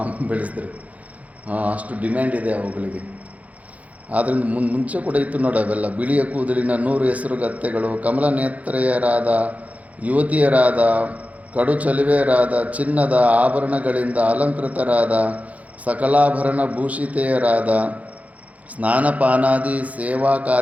ಬೆಳೆಸಿದ್ರೆ ಅಷ್ಟು ಡಿಮ್ಯಾಂಡ್ ಇದೆ ಅವುಗಳಿಗೆ. ಆದ್ದರಿಂದ ಮುಂಚೆ ಕೂಡ ಇತ್ತು ನೋಡಿ ಅವೆಲ್ಲ. ಬಿಳಿಯ ಕೂದಲಿನ 100 ಹೆಸರುಗತ್ತೆಗಳು, ಕಮಲ ನೇತ್ರೆಯರಾದ ಯುವತಿಯರಾದ, ಕಡು ಚಲುವೆಯರಾದ, ಚಿನ್ನದ ಆಭರಣಗಳಿಂದ ಅಲಂಕೃತರಾದ, ಸಕಲಾಭರಣ ಭೂಷಿತೆಯರಾದ, ಸ್ನಾನಪಾನಾದಿ ಸೇವಾ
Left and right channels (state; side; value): late; left; 0.070 ms